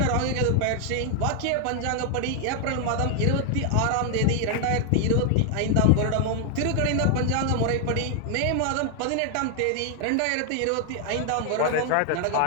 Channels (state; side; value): different; both; correlation 0.00